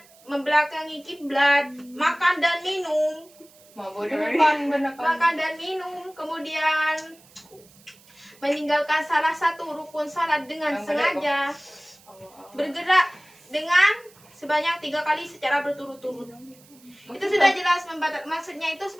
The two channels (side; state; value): right; noise; hiss, 26 dB below the sound